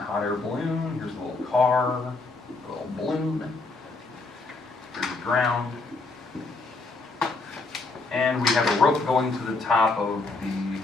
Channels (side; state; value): right; quieter; 3.6 dB